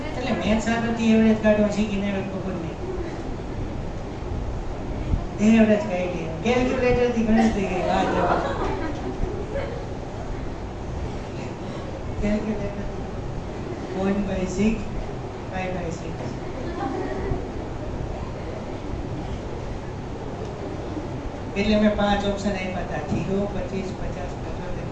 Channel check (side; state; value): both; identical; correlation 1.00